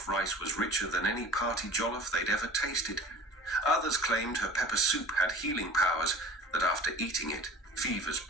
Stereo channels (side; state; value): both; normal; correlation 0.40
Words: rice was richer than any party jollof they'd ever tasted. Others claimed her pepper soup had healing powers that after eating it, fevers